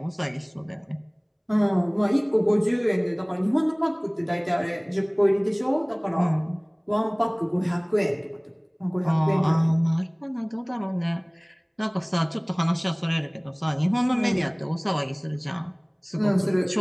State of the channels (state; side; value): identical; both; correlation 1.00